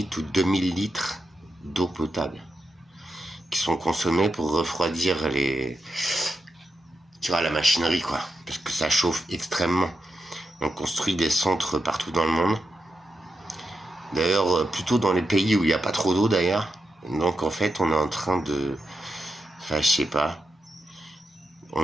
ou 2000 litres d'eau potable. qui sont consommés pour refroidir tu vois, la machinerie, quoi. Parce que ça chauffe extrêmement. On construit des centres partout dans le monde. D'ailleurs, plutôt dans les pays où il n'y a pas trop d'eau, d'ailleurs. Donc, en fait, on est en train de... Enfin, je sais pas.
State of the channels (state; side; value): normal; both; correlation 0.87